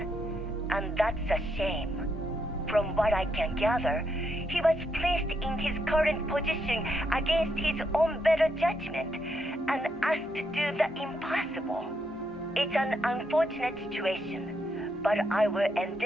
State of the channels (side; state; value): both; normal; correlation 0.79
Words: and that's a shame. From what I can gather, he was placed in his current position against his own better judgment and asked to do the impossible. It's an unfortunate situation, but I will